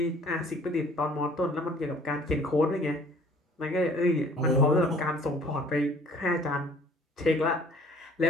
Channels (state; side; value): normal; both; correlation 0.55